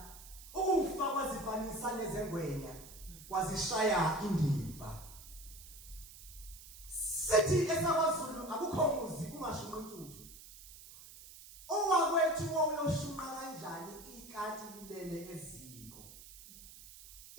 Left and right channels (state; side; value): noise; right; hiss, 17 dB below the sound